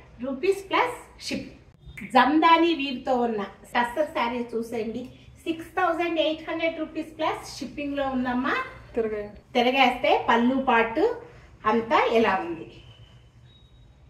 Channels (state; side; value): identical; both; correlation 1.00